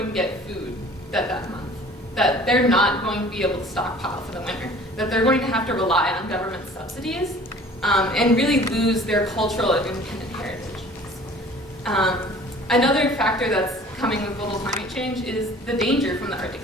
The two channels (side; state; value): both; normal; correlation 0.48